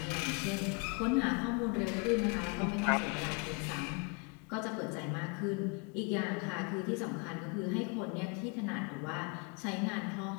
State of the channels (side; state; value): right; quieter; 32.9 dB